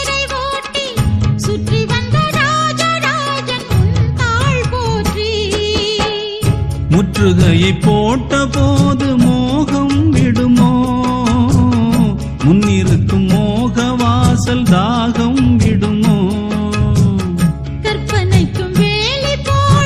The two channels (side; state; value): both; identical; correlation 1.00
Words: ஓட்டி சுற்றி வந்த ராஜராஜன் உன் தாள் போற்றி முற்றுகையை போட்ட போது மோகம் விடுமோ முன்னிருக்கும் மோக வாசல் தாகம் விடுமோ கற்பனைக்கும் வேலி